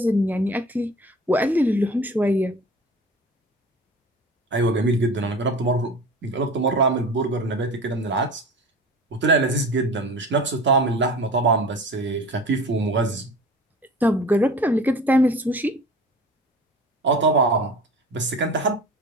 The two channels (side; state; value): both; normal; correlation 0.38